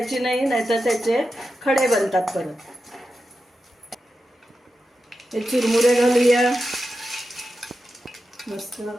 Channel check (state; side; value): normal; both; correlation 0.90